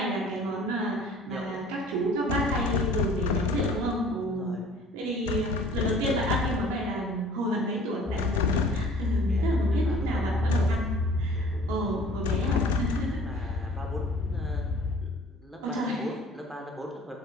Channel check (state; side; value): normal; both; correlation 0.49